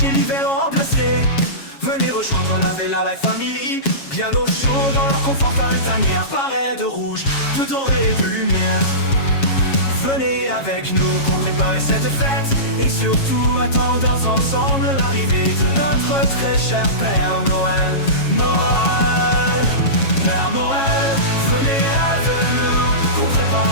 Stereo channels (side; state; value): right; late; 7.3 ms